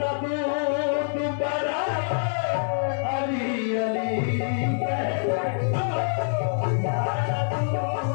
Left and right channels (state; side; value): silent; right; digital silence